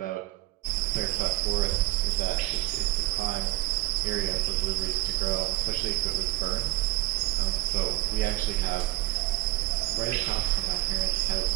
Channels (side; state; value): left; quieter; 18.0 dB